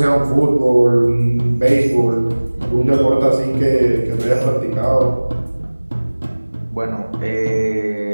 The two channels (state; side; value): inverted; both; correlation -1.00